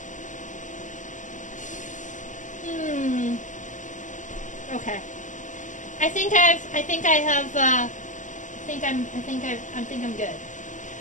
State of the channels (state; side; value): late; right; 0.36 ms